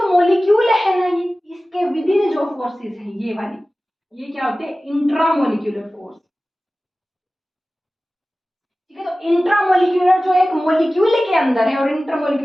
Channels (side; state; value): both; normal; correlation 0.96